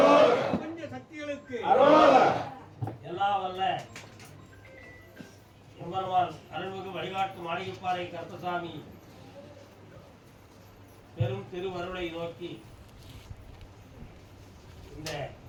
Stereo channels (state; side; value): identical; both; correlation 1.00